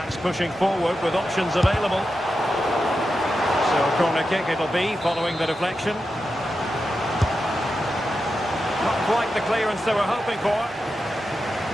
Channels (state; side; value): normal; both; correlation 0.89